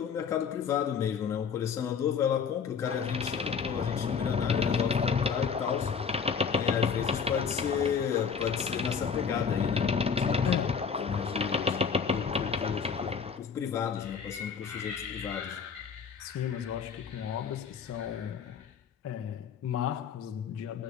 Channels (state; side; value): quieter; right; 6.3 dB